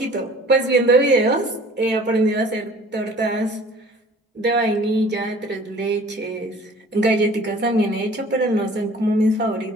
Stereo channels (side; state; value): both; normal; correlation 0.49